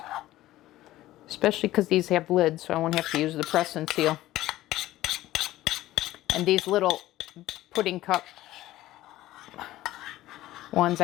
Especially because these have lids, so I won't have to use the press and seal. And these little pudding cup ones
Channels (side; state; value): right; quieter; 15.5 dB